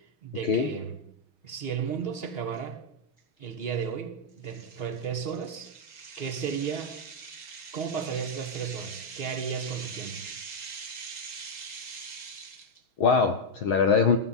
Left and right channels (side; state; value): right; late; 6.3 ms